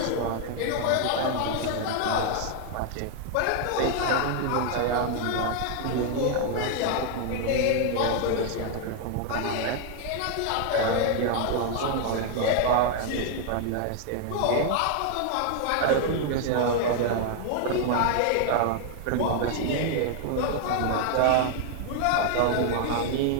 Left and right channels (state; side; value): different; both; correlation 0.00